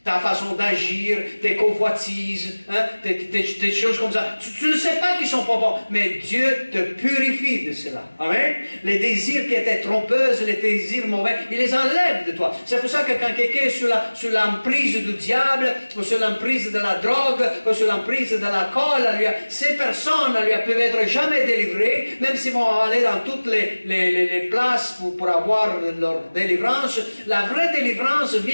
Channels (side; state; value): both; inverted; correlation -1.00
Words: ta façon d'agir, tes convoitises, hein, des choses comme ça. Tu ne sais pas qu'ils sont pas bons, mais Dieu te purifie de cela. Amen. Les désirs qui étaient trompeuses, les désirs mauvais, il les enlève de toi. C'est pour ça que quand quelqu'un est sous l'emprise du diable, ou sous l'emprise de la drogue, ou sous l'emprise de l'alcool, ces personnes ne peuvent être jamais délivrées, même s'ils vont aller dans toutes les places pour avoir leur délivrance. La vraie délivrance